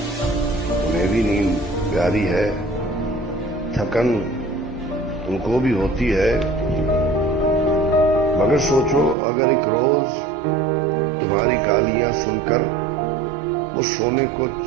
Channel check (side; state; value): left; drops out; at 9.2 s